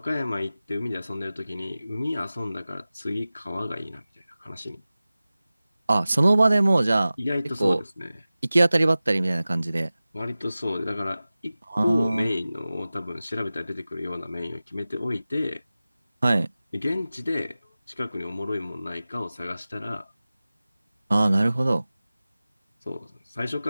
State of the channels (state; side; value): inverted; both; correlation -0.96